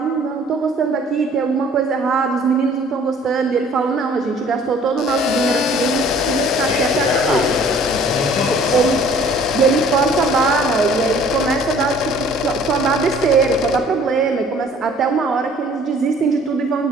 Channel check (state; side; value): normal; both; correlation 0.54